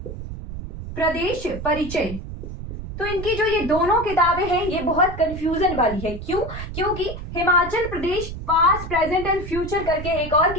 प्रदेश परिचय। तो इनकी जो ये दोनों किताबें हैं ये बहुत कंफ्यूजन वाली है, क्यों, क्योंकि Himachal Pradesh past present and future करके एक और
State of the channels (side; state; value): right; noise; rumble, 9 dB below the sound